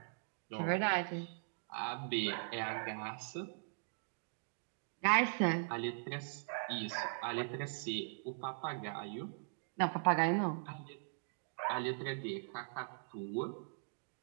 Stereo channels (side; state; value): left; silent; digital silence